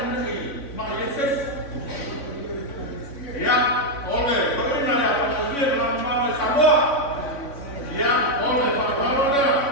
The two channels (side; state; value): right; late; 3.6 ms